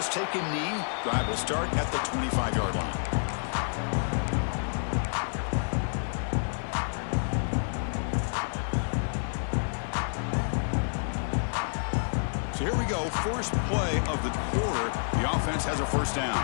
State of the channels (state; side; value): silent; right; 59 dB below the other